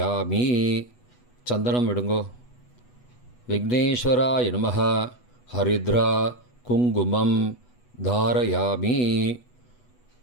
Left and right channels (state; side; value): late; right; 8.1 ms